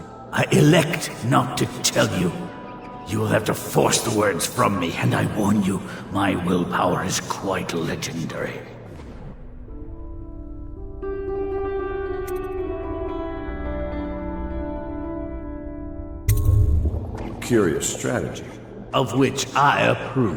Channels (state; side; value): identical; both; correlation 1.00